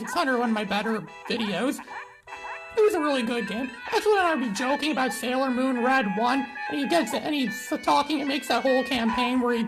one of my better videos. It was a really good game. That's when I'd be joking about Sailor Moon Red 1, and he gets it, and he's talking and makes that whole campaign where he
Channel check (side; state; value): both; identical; correlation 1.00